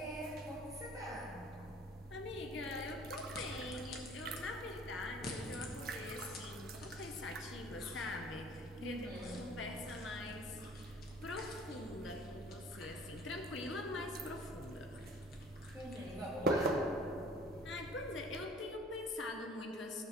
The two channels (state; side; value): normal; both; correlation 0.51